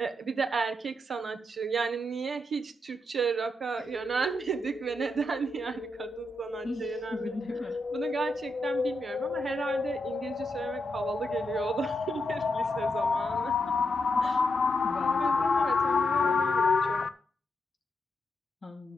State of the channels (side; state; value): both; normal; correlation 0.83